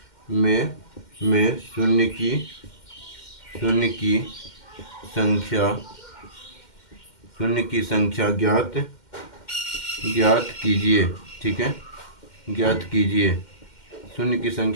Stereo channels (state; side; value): late; right; 2.1 ms